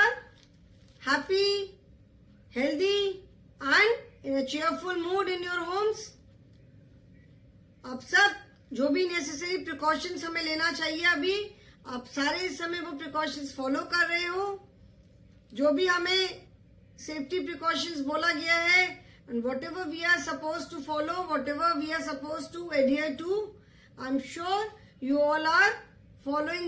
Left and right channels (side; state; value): both; identical; correlation 1.00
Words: happy, healthy and in a cheerful mood in your homes. आप सब जो भी necessary precautions हमें लेना चाहिए अभी आप सारे इस समय वो प्रिकॉशंस फॉलो कर रहे हो जो भी हमें सेफ्टी प्रिकॉशंस बोला गया है and whatever we are suppose to follow whatever we are suppose to adhere to I am sure you all are